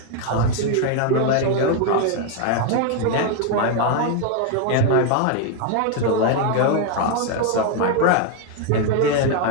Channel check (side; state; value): both; different; correlation 0.01